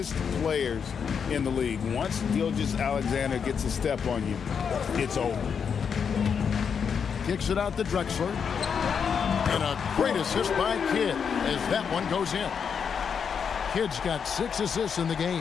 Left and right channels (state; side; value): quieter; right; 6.8 dB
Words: players in the league. Once Gilgeous-Alexander gets a step on you, it's over. Kicks it out to Drexler. And a great assist by Kidd as that one goes in. Kidd's got 6 assists in the